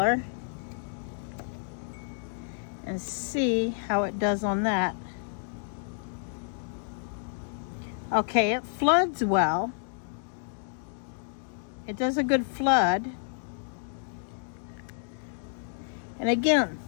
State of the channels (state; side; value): silent; right; digital silence